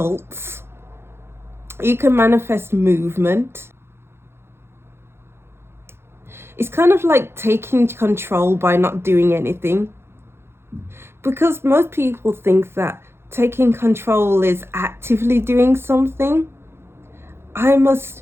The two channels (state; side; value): late; left; 0.12 ms